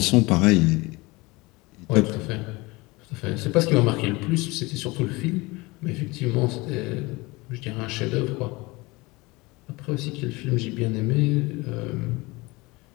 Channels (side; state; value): right; quieter; 23.4 dB